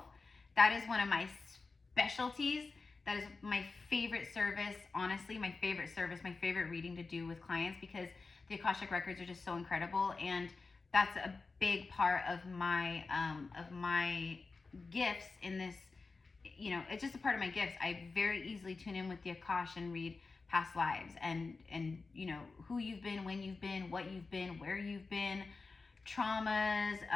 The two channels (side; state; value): right; quieter; 4.1 dB